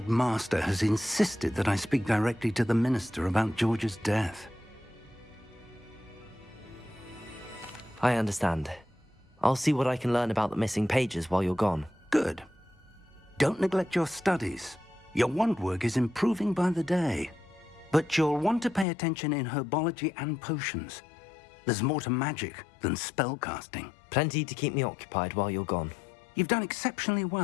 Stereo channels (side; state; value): right; drops out; at 18.9 s